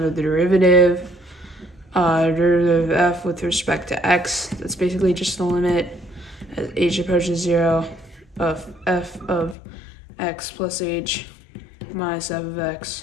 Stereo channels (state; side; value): drops out; right; at 9.6 s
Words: the derivative. Derivative of f with respect to x, that's basically just the limit as h approaches 0 of f of x plus h minus f of